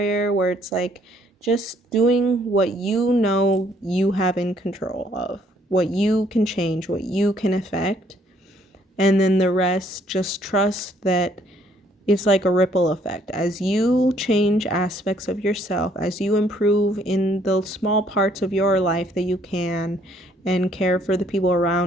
where it's like just doing what you have in control of, what you can change, what you can affect, and then the rest, just trust that it's like a ripple effect. As you change aspects of yourself, as you improve in the small parts of your life that you can and care for the people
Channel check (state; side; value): normal; both; correlation 0.65